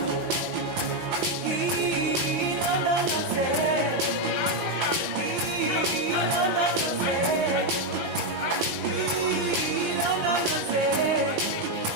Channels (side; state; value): left; late; 5.9 ms